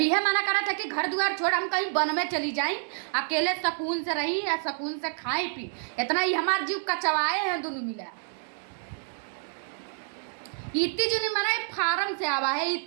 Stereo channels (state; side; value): silent; left; digital silence